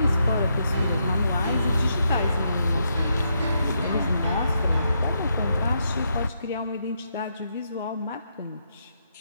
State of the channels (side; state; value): both; inverted; correlation -0.80